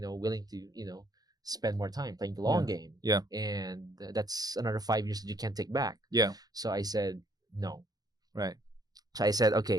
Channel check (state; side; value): late; left; 0.19 ms